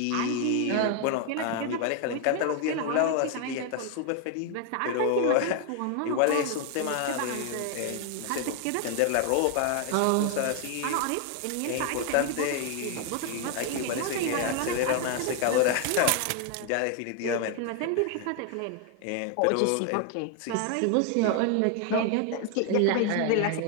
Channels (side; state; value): both; different; correlation 0.00